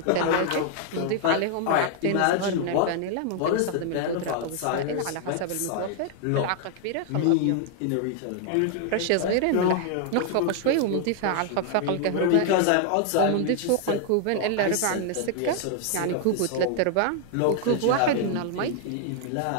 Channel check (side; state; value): both; different; correlation 0.00